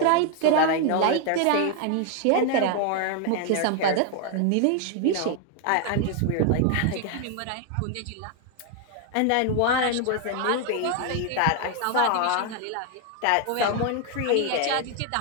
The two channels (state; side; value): different; both; correlation 0.00